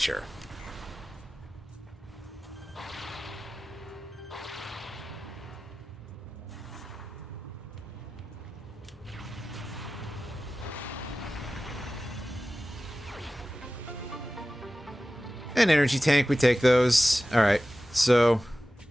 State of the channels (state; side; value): normal; both; correlation 0.96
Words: An energy tank, we take those. Alright, so